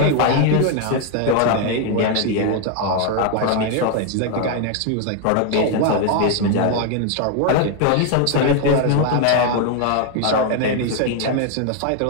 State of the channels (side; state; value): both; different; correlation 0.01